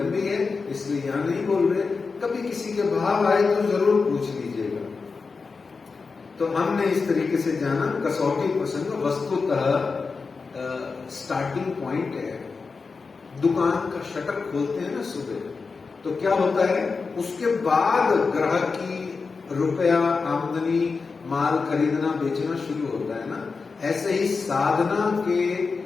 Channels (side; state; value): right; quieter; 4.6 dB